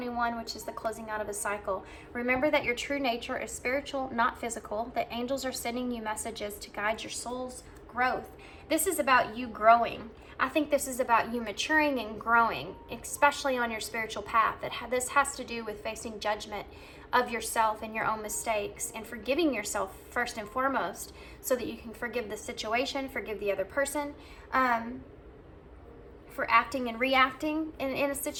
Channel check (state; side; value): identical; both; correlation 1.00